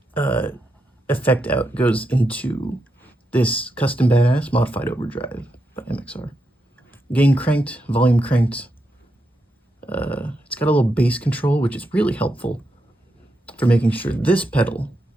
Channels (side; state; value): both; normal; correlation 0.84